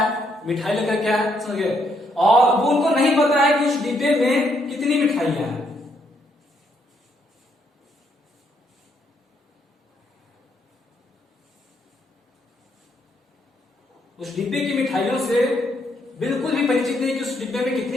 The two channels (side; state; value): both; normal; correlation 0.73